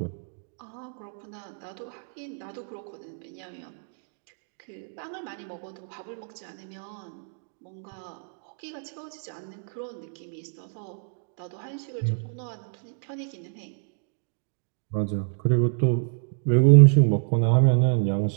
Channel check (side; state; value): left; silent; 60 dB below the other